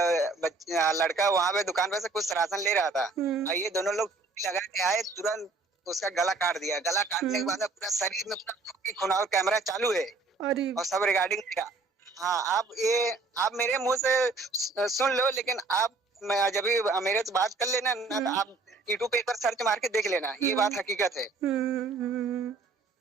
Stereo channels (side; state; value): left; quieter; 3.7 dB